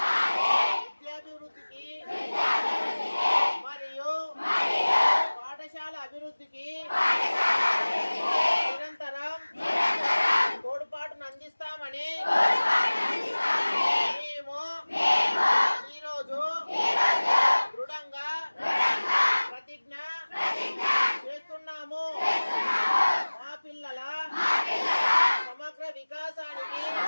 విద్యాభివృద్ధికి మరియు పాఠశాల అభివృద్ధికి నిరంతరం తోడ్పాటును అందిస్తామని మేము ఈరోజు దృఢంగా ప్రతిజ్ఞ చేస్తున్నాము. మా పిల్లల సమగ్ర వికాసానికి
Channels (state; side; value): inverted; both; correlation -1.00